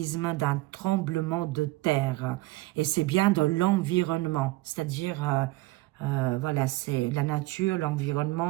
d'un tremblement de terre. Et c'est bien dans l'environnement. C'est-à-dire, voilà, c'est la nature,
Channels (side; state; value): left; quieter; 20.2 dB